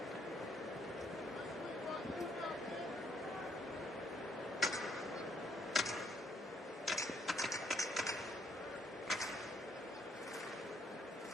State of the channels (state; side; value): normal; both; correlation 0.69